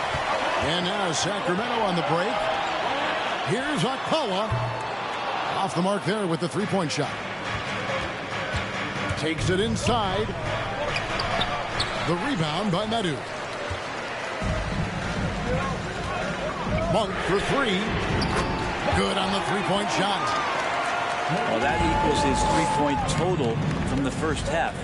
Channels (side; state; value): both; identical; correlation 1.00